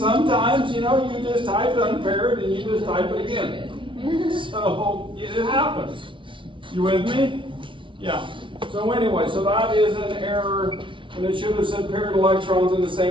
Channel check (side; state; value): left; late; 0.25 ms